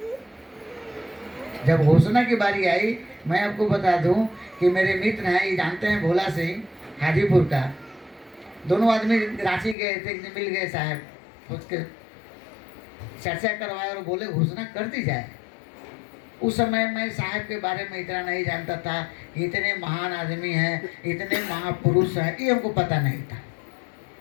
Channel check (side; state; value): right; drops out; at 9.8 s